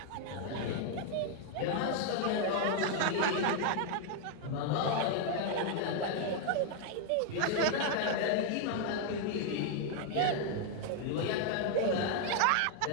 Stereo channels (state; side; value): different; both; correlation 0.00